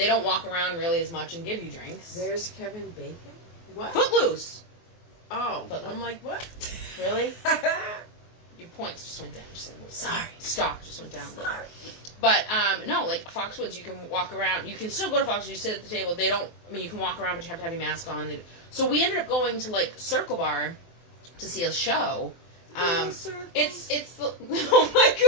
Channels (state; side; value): late; right; 23 ms